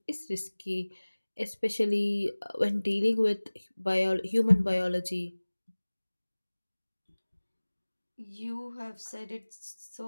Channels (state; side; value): inverted; both; correlation -1.00